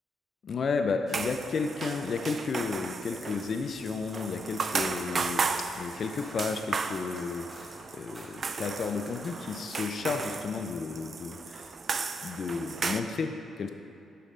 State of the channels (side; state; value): both; normal; correlation 0.79